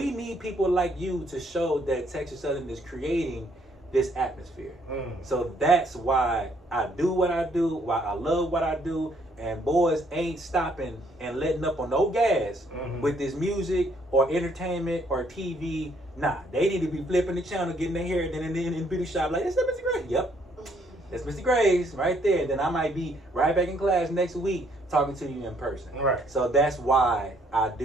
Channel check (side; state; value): both; normal; correlation 0.67